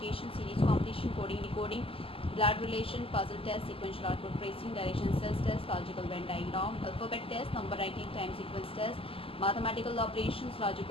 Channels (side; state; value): right; late; 0.26 ms